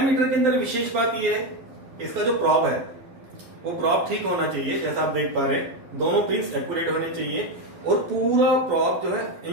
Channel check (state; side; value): late; left; 12 ms